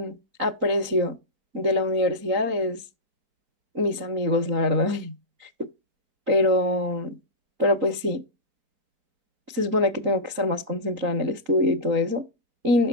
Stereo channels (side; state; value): left; late; 3.9 ms